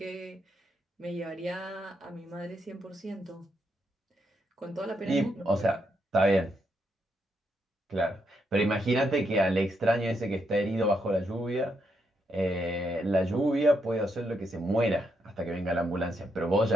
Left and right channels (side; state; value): both; normal; correlation 0.79